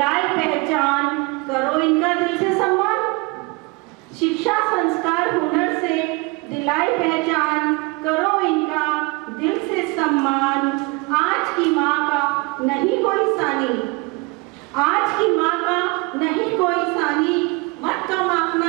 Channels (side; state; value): left; quieter; 27.0 dB